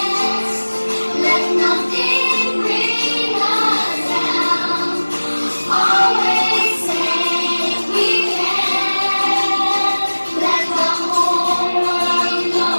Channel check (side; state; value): both; inverted; correlation -1.00